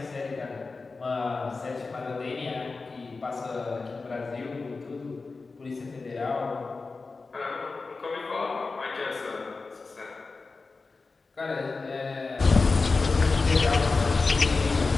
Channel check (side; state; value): right; quieter; 4.0 dB